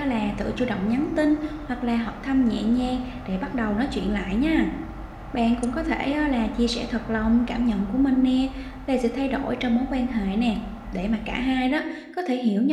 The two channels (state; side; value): identical; both; correlation 1.00